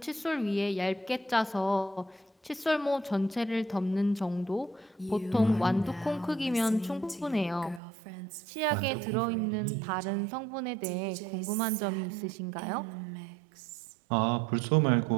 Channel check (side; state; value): left; drops out; at 7.8 s